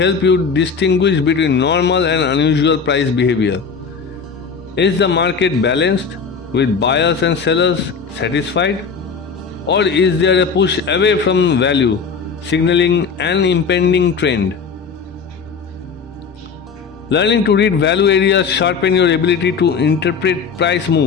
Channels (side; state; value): right; quieter; 5.6 dB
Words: you distinguish between normal and unusual price behavior. Is the market balanced, with buyers and sellers satisfied? Or is there a push away from value, signaling an impending trend? Learning to read value areas sharpen your ability to interpret price